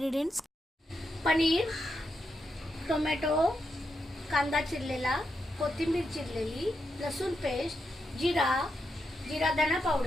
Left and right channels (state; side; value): normal; both; correlation 0.84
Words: पनीर, टोमॅटो, कांदा चिरलेला, कोथिंबीर चिरलेली, लसूण पेस्ट, जीरा धना